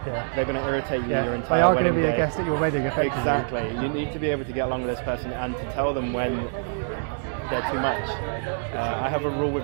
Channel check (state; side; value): silent; left; digital silence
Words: they're going to irritate you your entire wedding day. They are going to be a guest at your wedding, effectively. Exactly. You need to be able to get along with this person and to tell them when they're too much. I have a rule